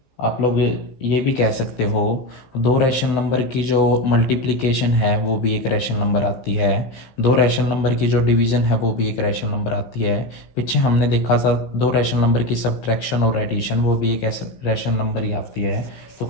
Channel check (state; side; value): late; right; 16 ms